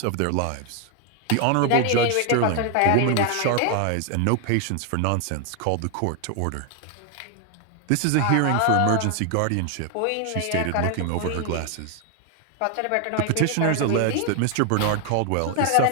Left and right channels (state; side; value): different; both; correlation 0.01